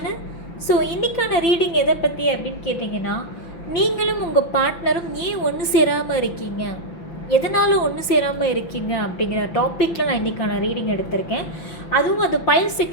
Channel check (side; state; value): right; late; 5.9 ms